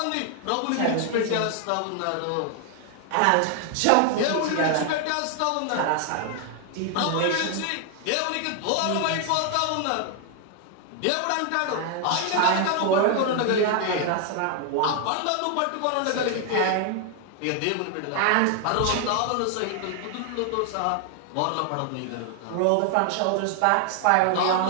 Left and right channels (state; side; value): different; both; correlation 0.00